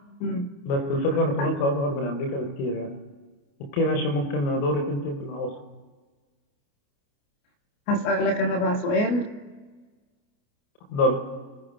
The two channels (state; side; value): late; right; 29 ms